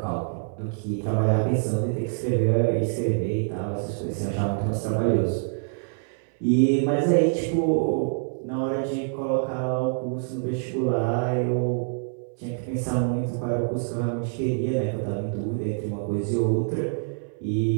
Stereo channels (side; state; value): left; silent; 61 dB below the other